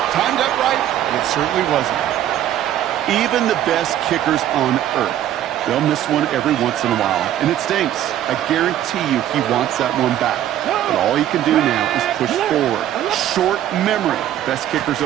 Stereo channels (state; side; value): quieter; left; 11.8 dB